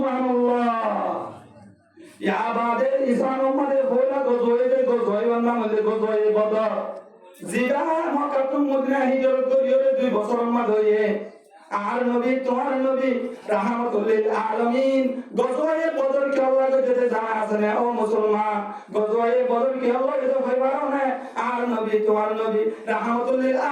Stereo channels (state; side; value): identical; both; correlation 1.00